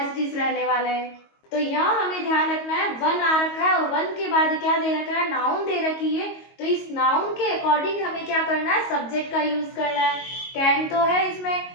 इट इज रहने वाला है। तो यहाँ हमें ध्यान रखना है, वन आ रखा है और वन के बाद क्या दे रखा है, नाउन दे रखी है। तो इस नाउन के अकॉर्डिंग हमें क्या करना है, सब्जेक्ट का यूज करना है। कैन तो है इसमें,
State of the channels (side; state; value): right; late; 22 ms